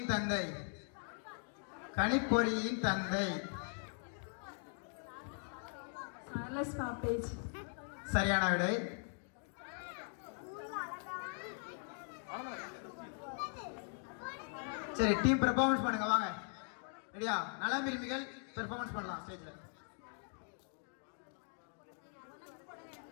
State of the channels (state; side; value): silent; right; 51 dB below the other